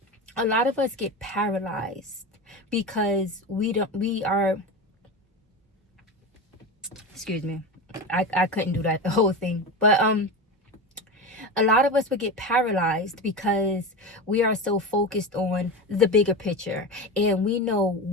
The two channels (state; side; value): normal; both; correlation 0.23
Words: a lot of us get paralyzed because we are, excuse me, I couldn't do that the whole thing, but a lot of us would get paralyzed because we are so focused on the bigger picture, and we know